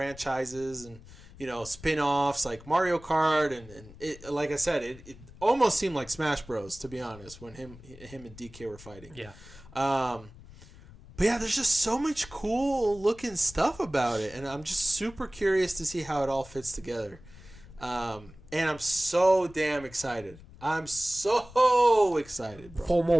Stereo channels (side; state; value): left; noise; rumble, 20 dB below the sound